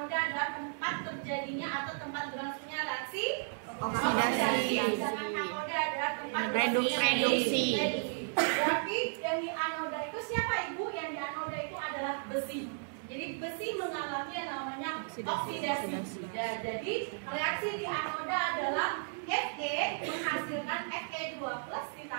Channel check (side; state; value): left; silent; digital silence